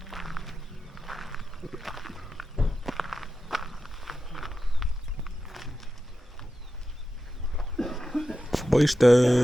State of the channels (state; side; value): normal; both; correlation 0.91